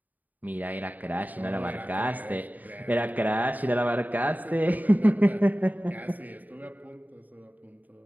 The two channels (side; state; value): left; late; 0.081 ms